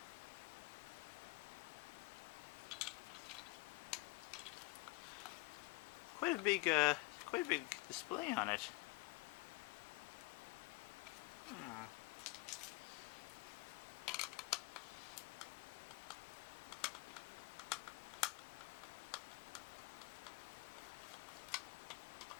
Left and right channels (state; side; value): quieter; right; 22.6 dB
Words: Quite a big display on it.